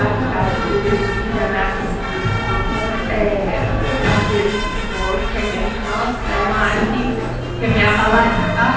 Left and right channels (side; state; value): both; identical; correlation 1.00